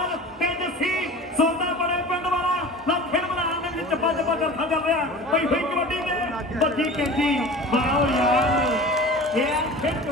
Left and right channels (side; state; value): both; normal; correlation 0.38